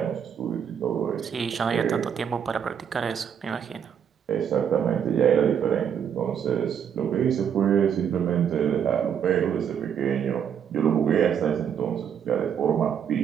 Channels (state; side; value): quieter; left; 8.2 dB